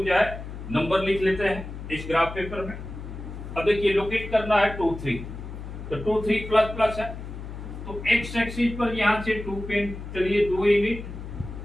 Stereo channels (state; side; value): noise; left; hum, 10 dB below the sound